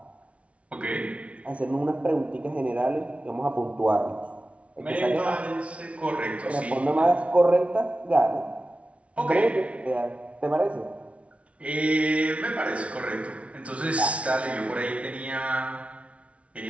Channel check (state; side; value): late; left; 0.063 ms